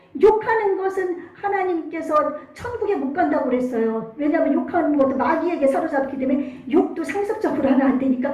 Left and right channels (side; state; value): both; identical; correlation 1.00